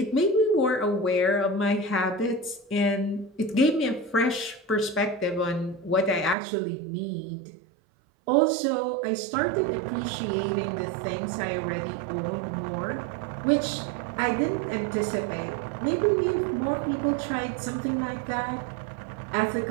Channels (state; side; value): drops out; left; at 6.4 s